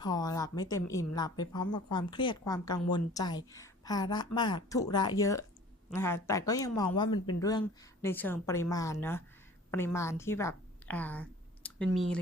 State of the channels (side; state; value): both; normal; correlation 0.47